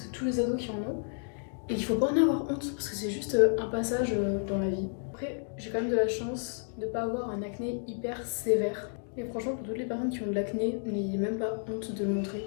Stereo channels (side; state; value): right; silent; 57 dB below the other